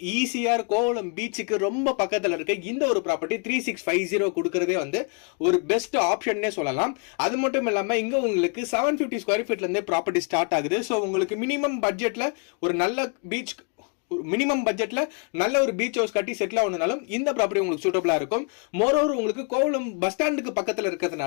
ஈசிஆர் கோவளம் பீச்சுக்கு ரொம்ப பக்கத்துல இருக்க இந்த ஒரு ப்ராப்பர்ட்டி 3650 கொடுக்கறதே வந்து ஒரு பெஸ்ட் ஆப்ஷன்னே சொல்லலாம். அது மட்டும் இல்லாம இங்க உங்களுக்கு 750 ஸ்கொயர் ஃபீட்ல இருந்து ப்ராப்பர்ட்டி ஸ்டார்ட் ஆகுது. சோ உங்களுக்கு மினிமம் பட்ஜெட்ல ஒரு நல்ல பீச், மினிமம் பட்ஜெட்ல நல்ல ஒரு பீச் ஹவுஸ் கட்டி செட்டில் ஆகணும்னாலும் இந்த ப்ராப்பர்ட்டி உங்களுக்கு சூட்டபிளா இருக்கும். மோரோவர் உங்களுக்கு கோவளம் பஸ் ஸ்டாண்டுக்கு பக்கத்துல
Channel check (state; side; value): quieter; right; 37.8 dB